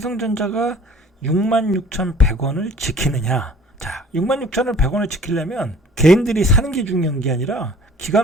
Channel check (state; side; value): normal; both; correlation 0.51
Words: 66,100원을 지키느냐. 자, 66,100원을 지키려면 개인들이 사는 게 중요한 게 아니라